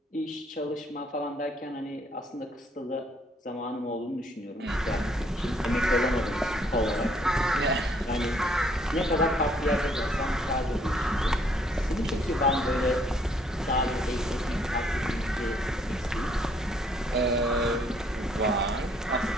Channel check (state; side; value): normal; both; correlation 0.66